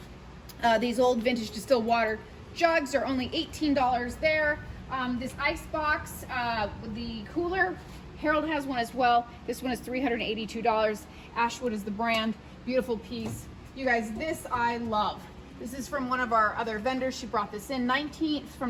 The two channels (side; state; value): both; identical; correlation 1.00